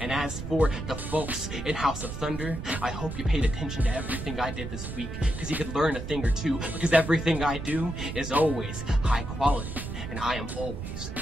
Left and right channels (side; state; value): right; noise; rumble, 7 dB below the sound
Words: as for the folks in House of Thunder, I hope you paid attention to everything I did this week, because you could learn a thing or two, because everything I do is always high quality, and I am always